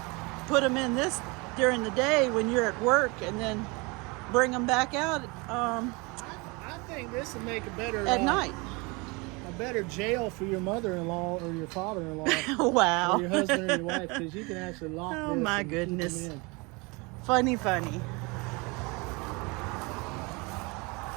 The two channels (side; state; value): left; quieter; 27.4 dB